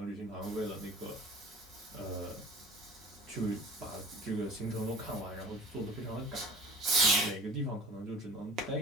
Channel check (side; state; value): both; normal; correlation 0.43